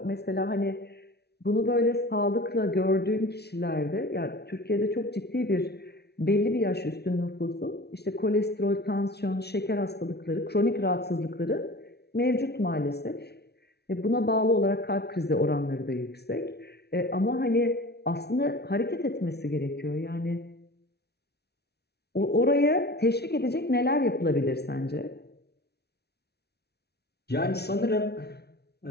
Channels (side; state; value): right; late; 0.48 ms